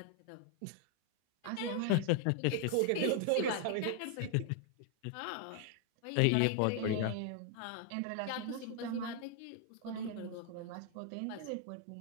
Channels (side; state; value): both; different; correlation 0.00